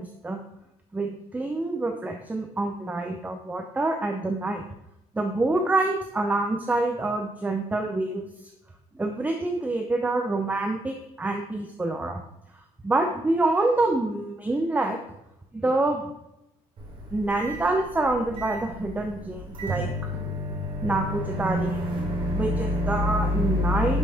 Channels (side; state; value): both; normal; correlation 0.75